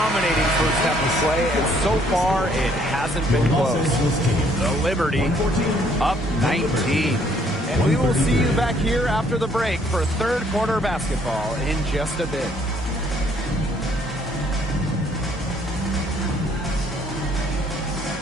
first half of play, and so far it hasn't been close. The Liberty up 19. And we will see you back here after the break for third quarter basketball in just a bit.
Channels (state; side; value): normal; both; correlation 0.64